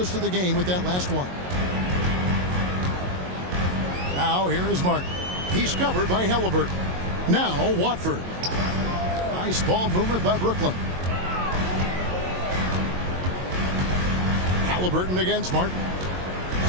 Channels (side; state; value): left; late; 22 ms